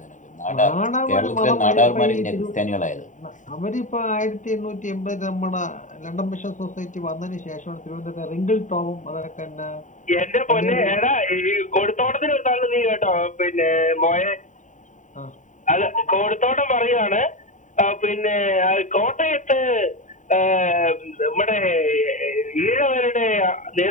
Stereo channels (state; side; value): late; right; 0.36 ms